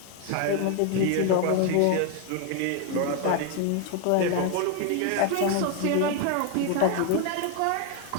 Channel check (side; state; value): both; different; correlation 0.01